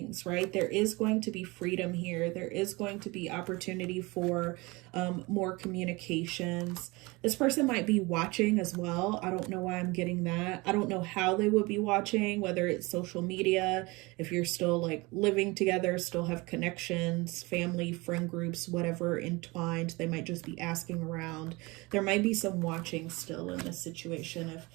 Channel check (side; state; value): left; quieter; 24.4 dB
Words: right? There is going to be freedom here. There is going to be opportunity for more communications. This person might be watching as well. I don't know why I'm getting that. I don't know how they would be watching, whether it's social media, if you're still like living together, still have connections, family, friend groups, whatever entwined. They might just be asking around. There might be some watching still in this situation if